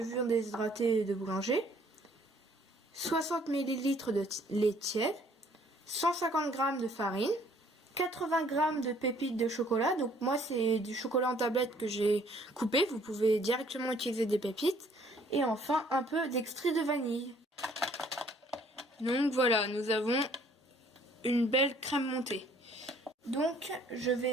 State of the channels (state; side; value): normal; both; correlation 0.60